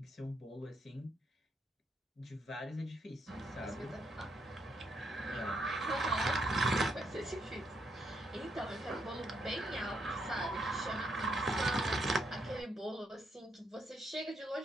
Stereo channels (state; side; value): normal; both; correlation 0.76